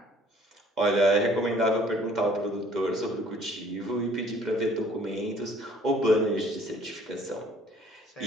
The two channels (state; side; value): normal; both; correlation 0.57